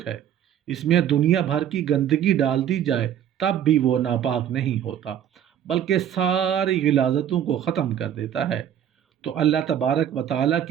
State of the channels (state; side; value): quieter; left; 9.9 dB